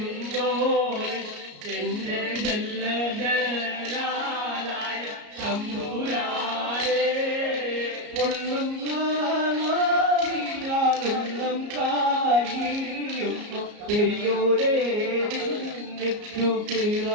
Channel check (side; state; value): left; late; 34 ms